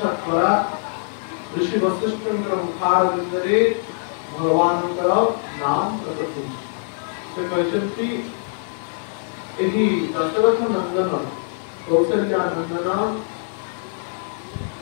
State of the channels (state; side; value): silent; right; digital silence